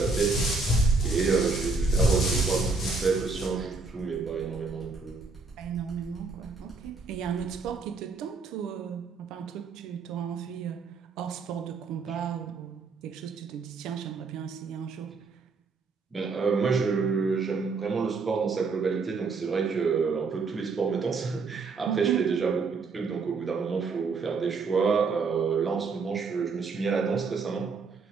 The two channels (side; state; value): left; quieter; 4.4 dB